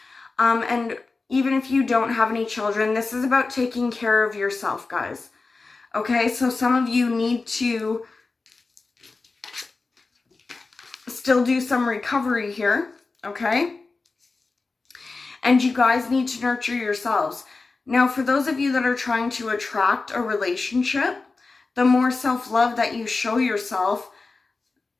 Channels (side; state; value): right; quieter; 3.9 dB